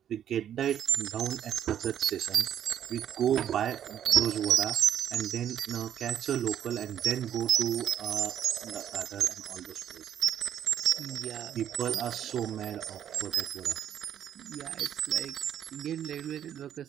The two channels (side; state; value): left; quieter; 10.1 dB